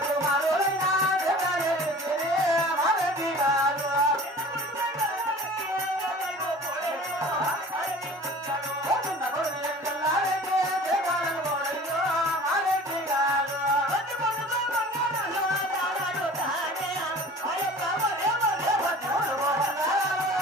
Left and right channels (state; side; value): normal; both; correlation 0.43